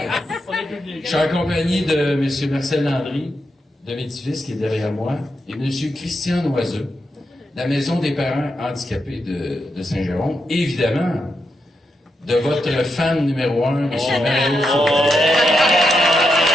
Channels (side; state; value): both; normal; correlation 0.84